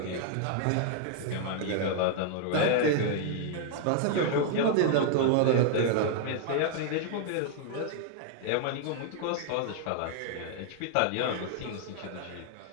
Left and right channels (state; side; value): different; both; correlation 0.00